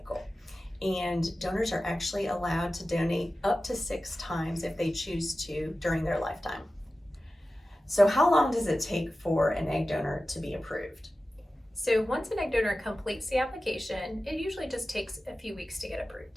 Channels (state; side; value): normal; both; correlation 0.95